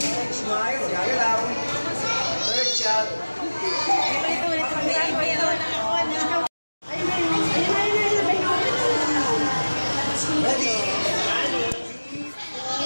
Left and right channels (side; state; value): both; inverted; correlation -1.00